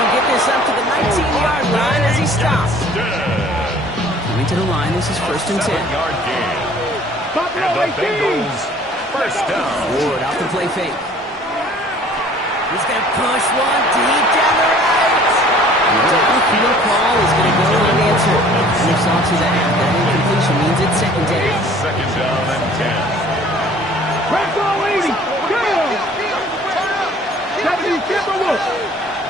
get this up to the 19-yard line as he stops. Coming to the line, this is 1st and 10. 7-yard gain. And the Bengals first down. Ward off the play fake. He's going to push one deep down the right. The downfield call is going to go unanswered. And you saw to that. That incompletion means it's 2nd down. 2nd down and 10.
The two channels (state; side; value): normal; both; correlation 0.52